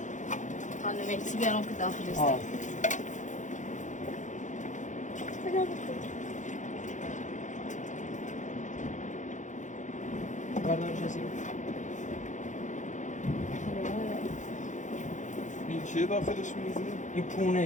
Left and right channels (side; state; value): right; late; 0.36 ms